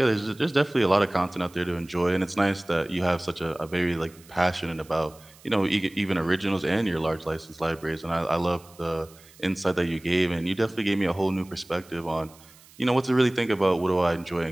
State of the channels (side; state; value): right; noise; hiss, 25 dB below the sound